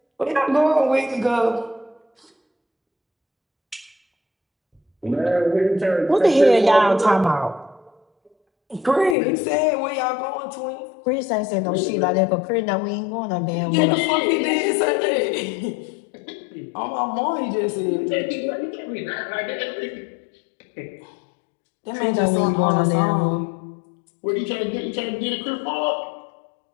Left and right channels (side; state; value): right; drops out; at 9.2 s